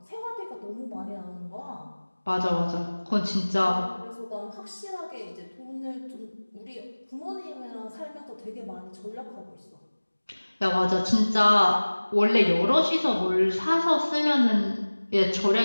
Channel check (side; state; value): both; inverted; correlation -1.00